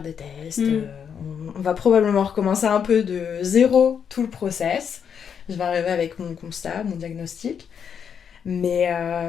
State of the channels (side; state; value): right; quieter; 7.5 dB